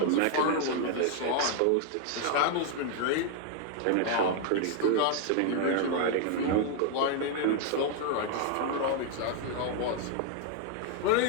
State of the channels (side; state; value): both; different; correlation 0.00